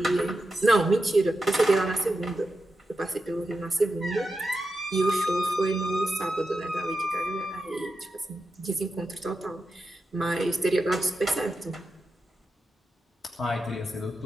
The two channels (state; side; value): normal; both; correlation 0.89